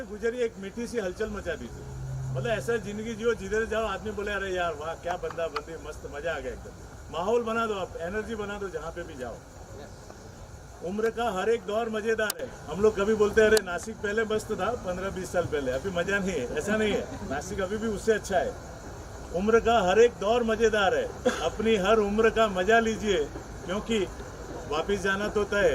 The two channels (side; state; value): both; identical; correlation 1.00